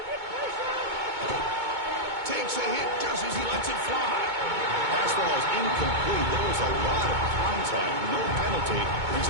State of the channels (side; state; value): left; late; 2.2 ms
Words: Takes a hit just as he lets it fly. Pass ball is incomplete. There was a lot of contact. No penalty. Brings